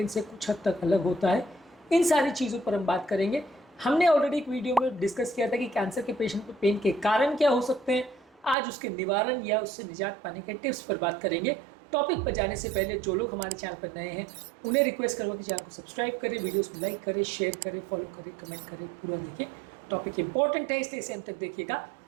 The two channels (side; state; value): left; drops out; at 8.6 s